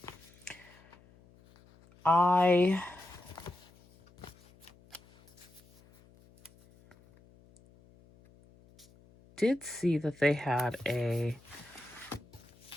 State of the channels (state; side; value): noise; left; hum, 27 dB below the sound